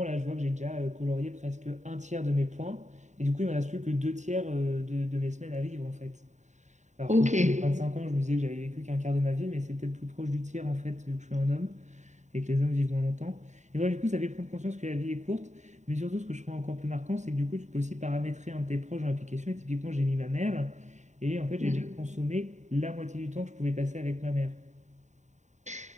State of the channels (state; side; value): late; left; 0.34 ms